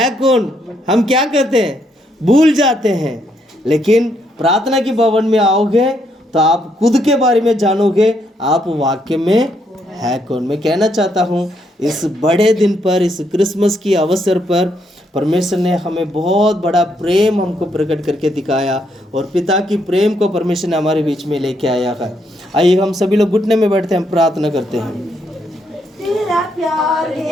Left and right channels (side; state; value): both; normal; correlation 0.75